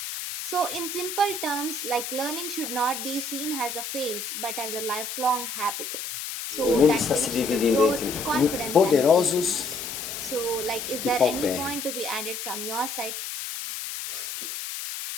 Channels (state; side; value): noise; left; hiss, 6 dB below the sound